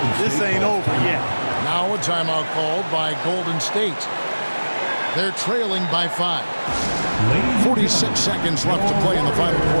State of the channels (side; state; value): both; inverted; correlation -1.00